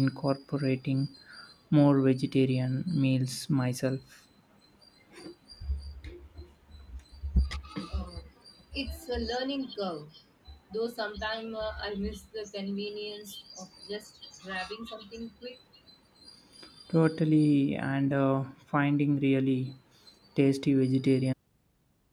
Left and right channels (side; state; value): both; identical; correlation 1.00